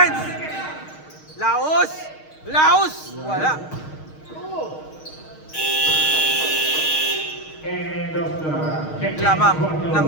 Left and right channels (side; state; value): right; late; 6.5 ms